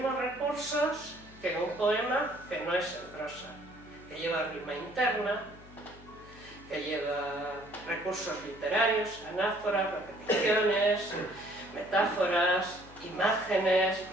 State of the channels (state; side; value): noise; left; hum, 21 dB below the sound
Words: recursos que un poema que no es en prosa, que lleva rima interna, que lleva recursos literarios, anáforas, repeticiones, metáforas, imágenes,